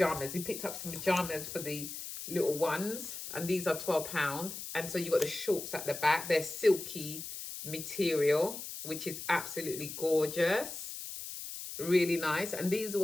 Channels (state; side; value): noise; left; hiss, 8 dB below the sound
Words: He picked up some pajamas for the little ones, and these are £12. And so you got the shorts at the back. They're silky material, which is absolutely gorgeous. Really nice. And these